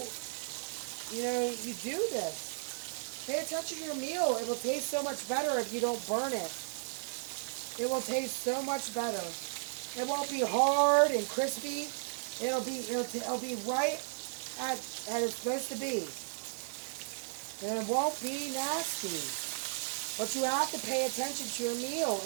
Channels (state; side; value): silent; left; 55 dB below the other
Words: this. Pay attention to your meal. It will taste so much better if you don't burn it. It will taste so much better. It won't be hard and crispy. It'll be right at it's supposed to be. And it won't be nasty. But you have to pay attention to your meal.